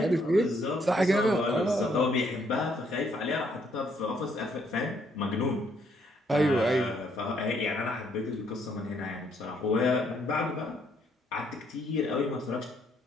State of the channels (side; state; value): both; normal; correlation 0.70